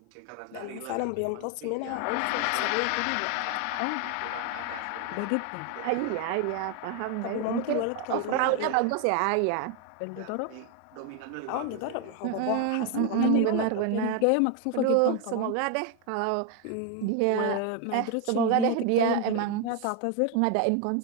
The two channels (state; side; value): different; both; correlation 0.01